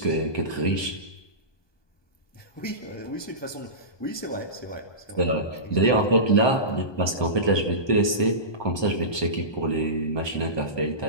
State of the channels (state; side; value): late; right; 1.2 ms